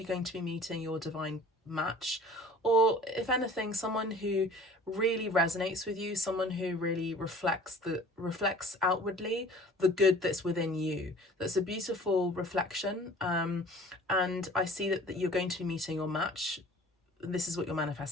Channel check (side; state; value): both; normal; correlation 0.47